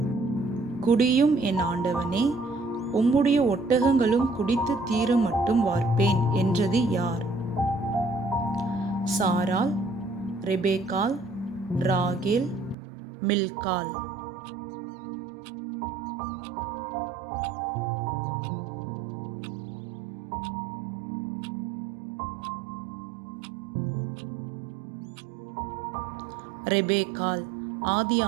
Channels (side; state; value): left; drops out; at 12.8 s